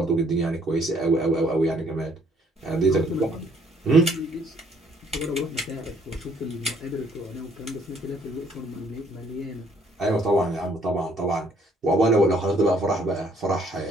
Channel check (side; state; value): both; normal; correlation 0.64